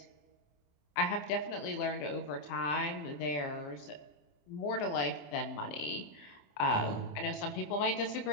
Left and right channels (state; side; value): late; right; 27 ms